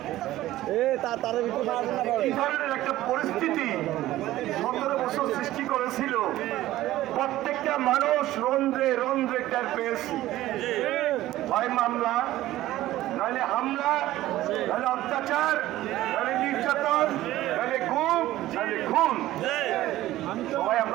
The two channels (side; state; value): left; quieter; 15.3 dB